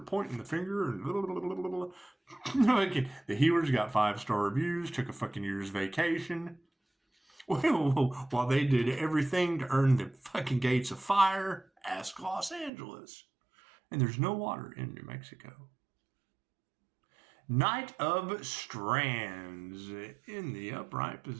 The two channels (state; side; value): drops out; left; at 12.7 s